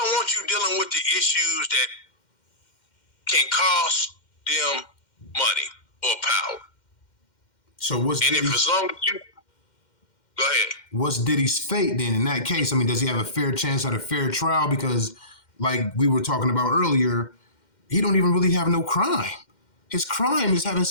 want you dealing with the issues that can cost them money or power. So what's and Diddy's, if as long as you go ahead, what's Diddy's fate then in that case? I mean, does he have a fair chance at a fair trial? Because like we were talking about earlier, he don't even really have no crime. His crime is having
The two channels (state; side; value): late; right; 2.1 ms